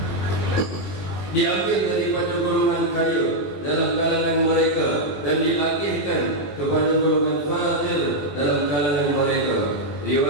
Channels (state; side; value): late; right; 21 ms